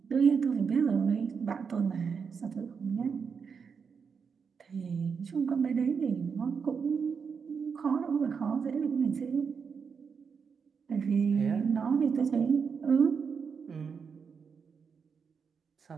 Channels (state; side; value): quieter; left; 6.0 dB